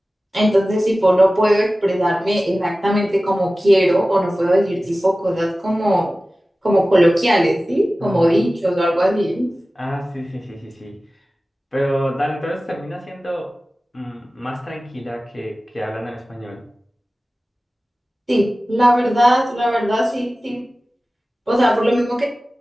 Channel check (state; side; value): normal; both; correlation 0.97